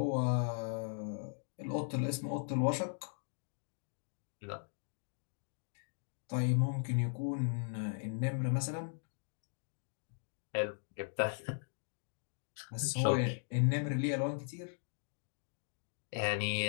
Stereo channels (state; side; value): silent; right; digital silence